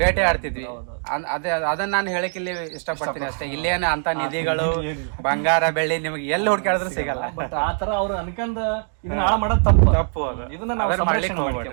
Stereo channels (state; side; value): silent; left; 63 dB below the other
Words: ಆಡ್ತಿದ್ವಿ. ಅದನ್ನ ನಾನು ಹೇಳಕ್ ಇಲ್ಲಿ ಇಷ್ಟಪಡ್ತೀನಿ ಅಷ್ಟೇ. ಇಲ್ಲೇನ ಅಂತ ನಿಧಿಗಳು ಬಂಗಾರ ಬೆಳ್ಳಿ ನಿಮ್ಗೆ ಎಲ್ಲಿ ಹುಡ್ಕಾಡಿದ್ರು ಸಿಗಲ್ಲ. ಬಟ್ ಆತರ ಅವ್ರು ಅನ್ಕಂದ ಇದನ್ನ ಹಾಳ ಮಾಡೋದು ತಪ್ಪು. ಇದನ್ನ